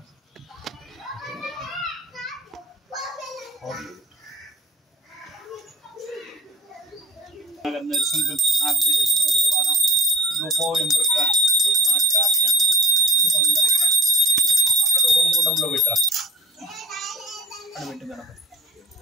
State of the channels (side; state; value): both; normal; correlation 0.43